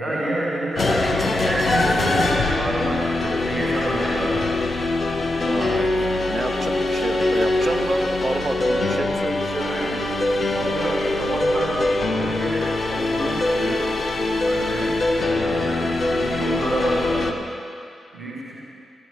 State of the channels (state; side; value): normal; both; correlation 0.87